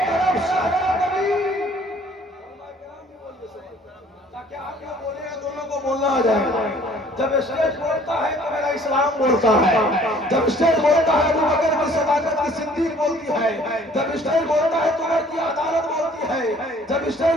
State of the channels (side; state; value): both; normal; correlation 0.55